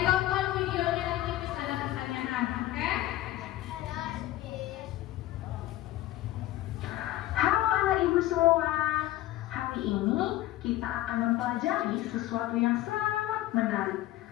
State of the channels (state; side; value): quieter; right; 15.2 dB